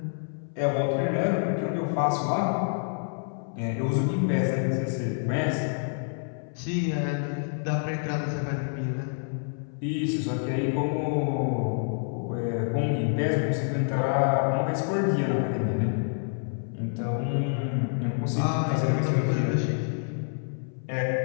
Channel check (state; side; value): silent; right; 60 dB below the other